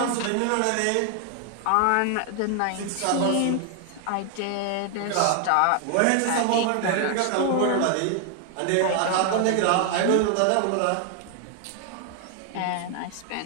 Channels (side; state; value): both; different; correlation 0.00